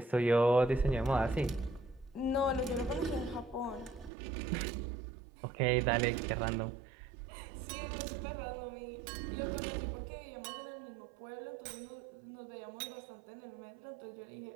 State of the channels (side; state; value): left; drops out; at 4.1 s